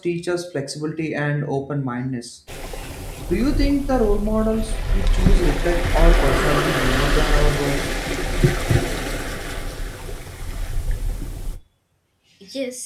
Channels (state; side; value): identical; both; correlation 1.00